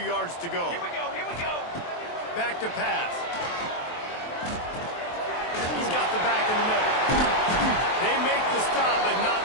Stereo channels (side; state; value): right; late; 23 ms